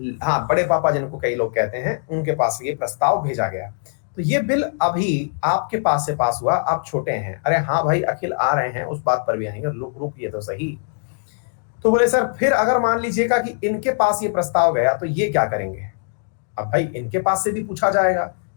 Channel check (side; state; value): right; silent; digital silence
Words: हाँ, बड़े पापा जिनको कई लोग कहते हैं, उनके पास ये प्रस्ताव भेजा गया। तो ये बिल अभी आपके पास से पास हुआ, आप छोटे हैं। अरे हाँ भाई, अखिल आ रहे हैं, उस बात पर भी आएंगे, रुकिए तो सही। तो बोले सर फिर अगर मान लीजिएगा कि इनके पास ये प्रस्ताव गया तो ये क्या करेंगे? अब भाई इनके पास से भी पूछा जाएगा